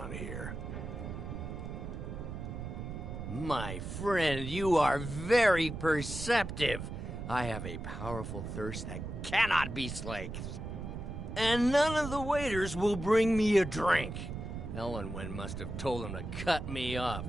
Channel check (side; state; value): right; noise; rumble, 7 dB below the sound